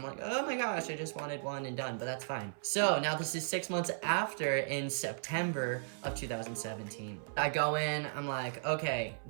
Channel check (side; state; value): left; silent; 54 dB below the other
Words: like, oh my gosh, I just wanted one and done, but that's fine. So now this is 6 months after, in September of 2017. I go in, I'm like, okay,